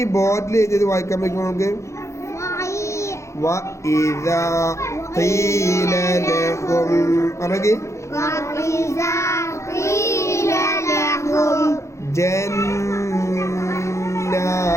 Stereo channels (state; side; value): late; right; 0.14 ms